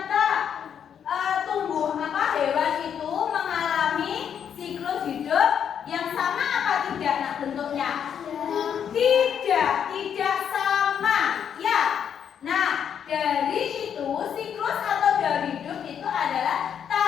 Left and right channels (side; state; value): right; quieter; 8.3 dB